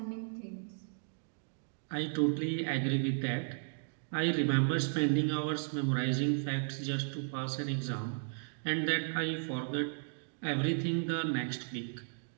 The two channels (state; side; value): silent; left; digital silence